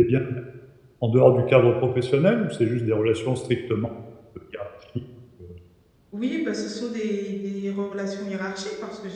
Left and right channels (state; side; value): identical; both; correlation 1.00